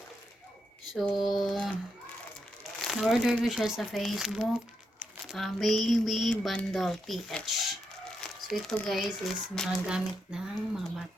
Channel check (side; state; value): both; normal; correlation 0.82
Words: So, na-order ko siya sa Facebook, Baby Bundle PH. So, ito guys is mga gamit ng mga